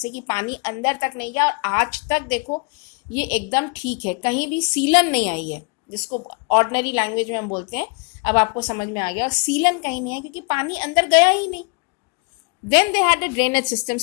कि पानी अंदर तक नहीं गया. और आज तक देखो ये एकदम ठीक है, कहीं भी सीलन नहीं आई है, जिसको ऑर्डिनरी लैंग्वेज में हम बोलते हैं. अब आपको समझ में आ गया. और सीलन कहीं नहीं है क्योंकि पानी अंदर गया ही नहीं. Then they had a drainage system.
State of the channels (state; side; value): quieter; right; 33.3 dB